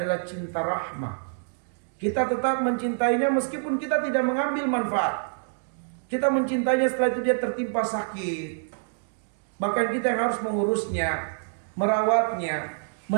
cinta rahmah. Kita tetap mencintainya meskipun kita tidak mengambil manfaat. Kita mencintainya setelah itu dia tertimpa sakit. Bahkan kita yang harus mengurusnya, merawatnya,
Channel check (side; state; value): left; silent; digital silence